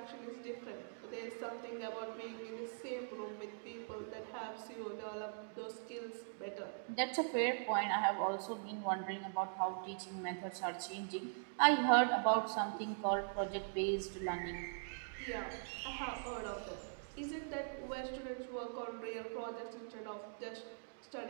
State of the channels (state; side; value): silent; left; digital silence